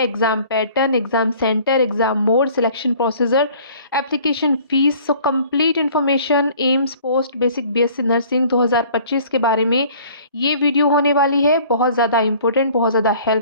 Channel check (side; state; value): both; inverted; correlation -0.52